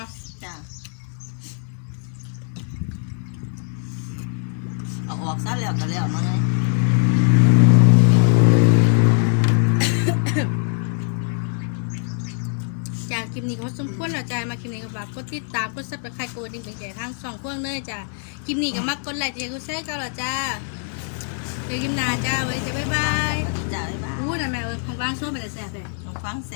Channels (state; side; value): silent; right; digital silence